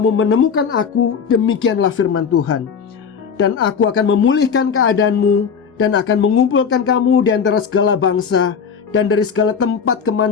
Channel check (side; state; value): right; quieter; 6.5 dB